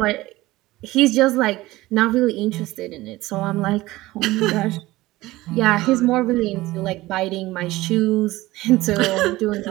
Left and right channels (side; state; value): left; quieter; 18.4 dB